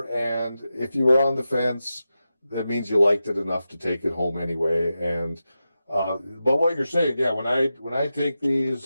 and if you were on the fence, that means you liked it enough to take it home anyway. And but what you're saying, yeah, when I take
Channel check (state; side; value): inverted; both; correlation -0.91